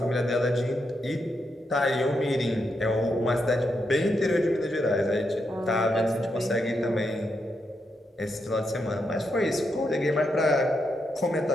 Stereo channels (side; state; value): both; normal; correlation 0.82